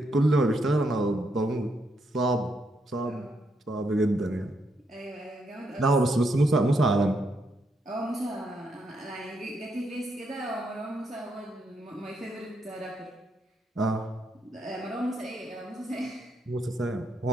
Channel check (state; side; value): normal; both; correlation 0.78